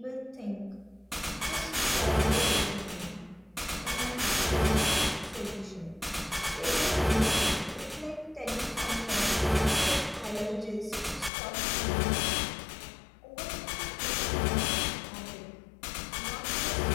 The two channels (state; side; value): drops out; right; at 11.3 s